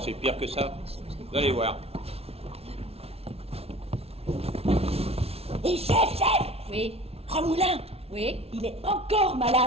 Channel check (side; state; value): left; late; 0.30 ms